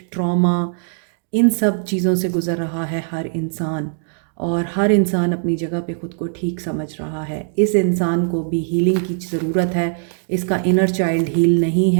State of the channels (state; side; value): silent; left; digital silence